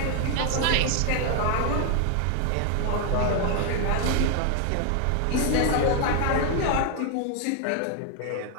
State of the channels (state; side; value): different; both; correlation 0.00